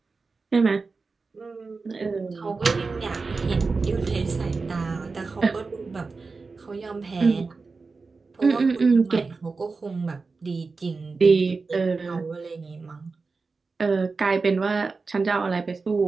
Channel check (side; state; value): left; quieter; 4.2 dB